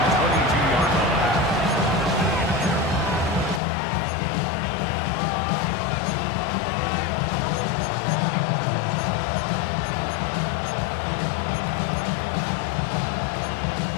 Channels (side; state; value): right; drops out; at 3.6 s